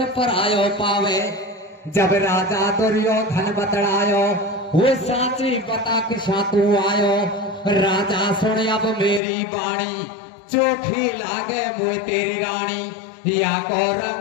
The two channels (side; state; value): right; drops out; at 9.2 s